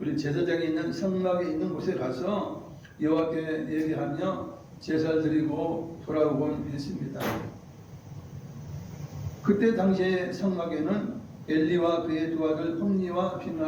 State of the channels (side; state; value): both; identical; correlation 1.00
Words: 제사장이 있는 성막에 있는 곳에 가서 여호와께 얘기하며 제사를 드리고 돌아오곤 했습니다. 그때 당시에 성막에는 엘리와 그의 두 아들 홈니와